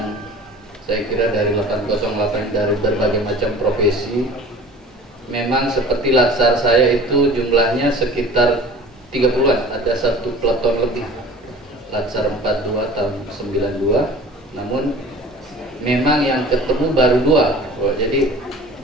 saya kira dari 808 dari berbagai macam profesi. Memang seperti latsar saya itu jumlahnya sekitar 30-an, ada satu peleton lebih. Latsar 42 tahun 92, namun memang yang ketemu baru 2. Jadi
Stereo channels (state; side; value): normal; both; correlation 0.43